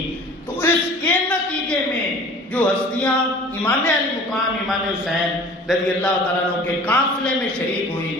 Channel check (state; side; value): normal; both; correlation 0.45